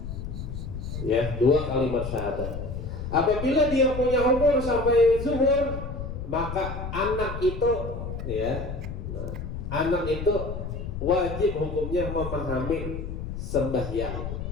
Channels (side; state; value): left; noise; rumble, 6 dB below the sound